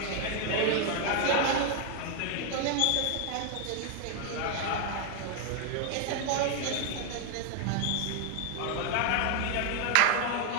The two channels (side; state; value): both; different; correlation 0.01